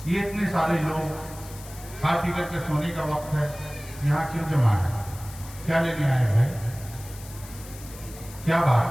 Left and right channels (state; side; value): noise; left; hiss, 17 dB below the sound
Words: یہ اتنے سارے لوگ کھا پی کر کے سونے کا وقت ہے، یہاں کیوں جمع ہے؟ کیا لینے آئے بھائی؟ کیا